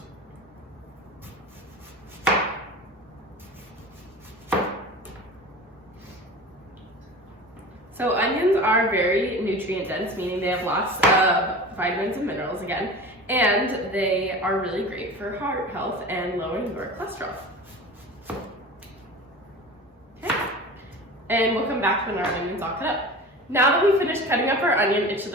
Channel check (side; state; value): both; normal; correlation 0.35